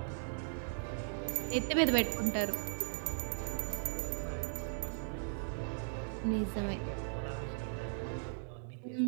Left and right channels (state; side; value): silent; left; digital silence